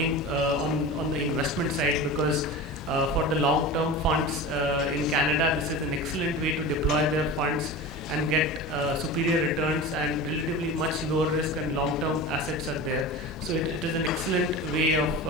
on the investment side because for the long-term funds in Canada, this is an excellent way to deploy their funds and get superior returns and relatively much lower risk and long-term assets are there. So it is an excellent way of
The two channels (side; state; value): both; normal; correlation 0.31